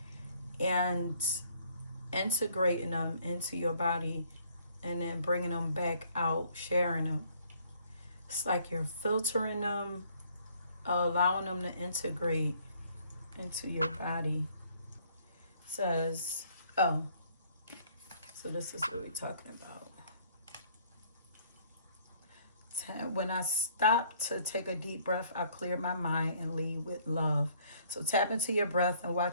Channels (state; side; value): inverted; both; correlation -0.62